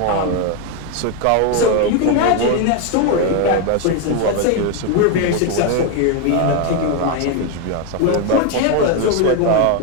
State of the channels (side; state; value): both; different; correlation 0.01